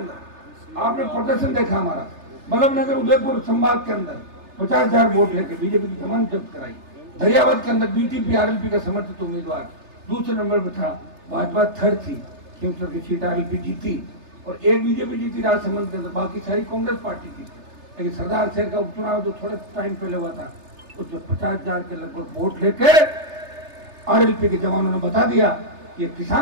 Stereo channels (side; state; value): left; late; 3.3 ms